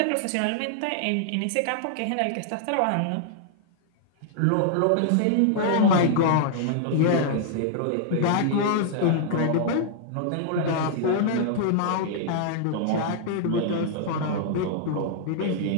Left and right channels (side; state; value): both; different; correlation -0.01